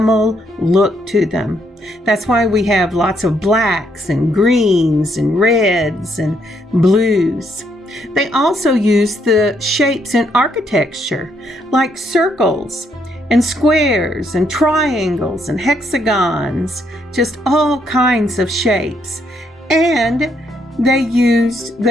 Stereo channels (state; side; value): normal; both; correlation 0.74